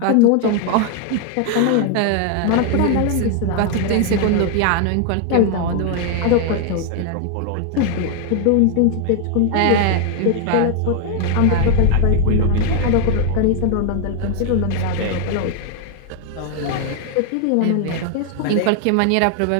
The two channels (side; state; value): both; different; correlation 0.00